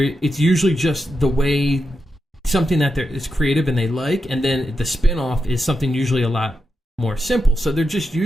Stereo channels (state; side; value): normal; both; correlation 0.87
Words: usually just the way something that is creative and they like, and then the spin-off is something usually a lot more simple. So they're just